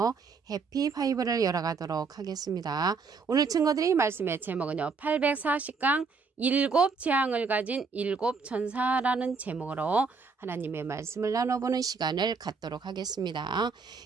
해피 바이블을 열어가도록 하겠습니다. 오늘 증거드릴 말씀의 제목은요. 840강 일곱 재앙을 가진 일곱 천사라는 제목으로 하나님의 말씀을 나눠보는 시간을 갖도록 하겠습니다.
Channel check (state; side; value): quieter; left; 4.8 dB